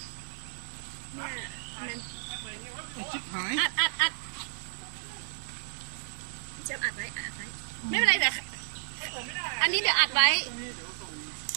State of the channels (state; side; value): silent; left; 56 dB below the other